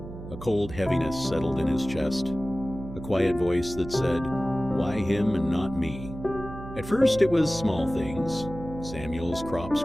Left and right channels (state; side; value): noise; right; hum, 12 dB below the sound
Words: a cold heaviness settled in his chest, a quiet voice that said, "Why him and not me?" At first it was small things. Samuel's crops